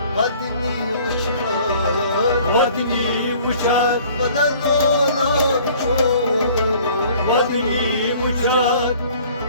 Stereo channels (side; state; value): both; inverted; correlation -0.53